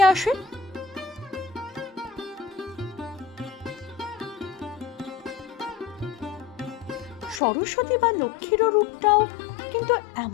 আসে? সরস্বতী বা লক্ষ্মীর রূপটাও কিন্তু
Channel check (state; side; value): drops out; right; at 7.4 s